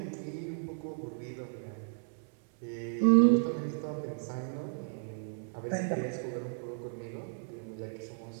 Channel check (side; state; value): left; silent; 55 dB below the other